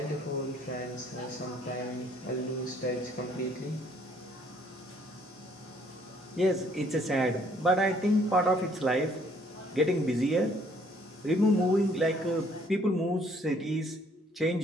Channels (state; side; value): normal; both; correlation 0.63